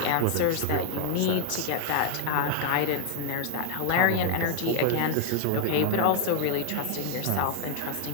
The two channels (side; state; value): both; different; correlation 0.00